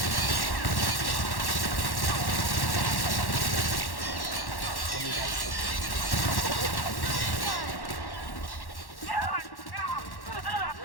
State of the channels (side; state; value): right; late; 1.1 ms